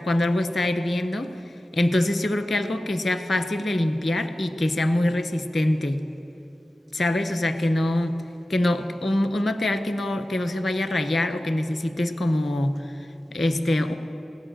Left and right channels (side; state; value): both; normal; correlation 0.95